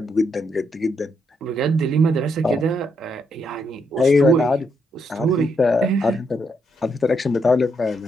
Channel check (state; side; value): normal; both; correlation 0.78